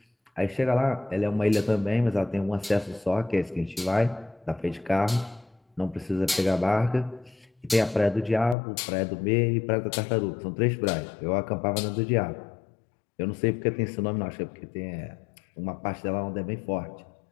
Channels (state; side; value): drops out; right; at 8.6 s